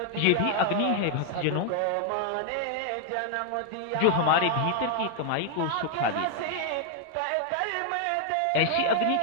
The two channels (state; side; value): different; both; correlation 0.00